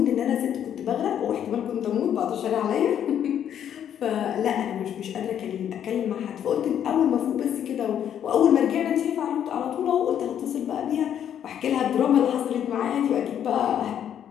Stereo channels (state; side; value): quieter; right; 9.6 dB